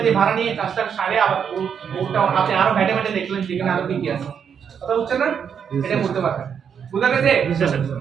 দিয়ে ভাড়া নিয়ে কাজটা সারে আবার ওটা আপনি আরো ঘাটে ঘাটে দেখলেন যেখানে আরো কি আছে, কথা বুঝছেন না? এটা করতে পারবেন, বুঝা গেছে?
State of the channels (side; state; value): left; quieter; 7.5 dB